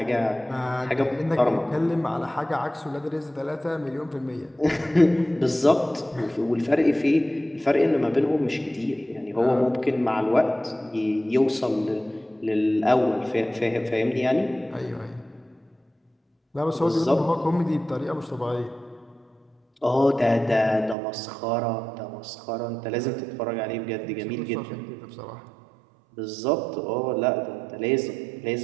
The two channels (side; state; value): left; drops out; at 21.0 s